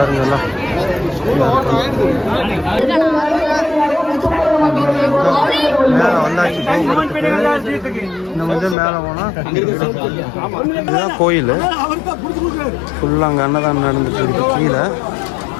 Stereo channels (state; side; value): drops out; right; at 8.8 s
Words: எல்லாம் மேலே வந்தாச்சு. இந்த வந்து மேலே போனால் இதுதான் கோயில். ஃபுல்லாக அங்கே அன்னதானம் நடந்துட்டு இருக்கு. கீழே